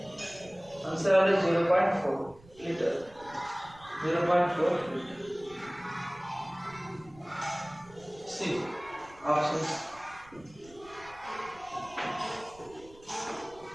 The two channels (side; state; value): right; noise; rumble, 23 dB below the sound